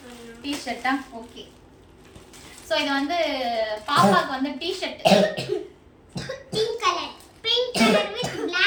டி-ஷர்ட்டா? ஓகே, ஸோ இது வந்து பாப்பாக்கு வந்து T-shirt pink colour with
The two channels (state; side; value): identical; both; correlation 1.00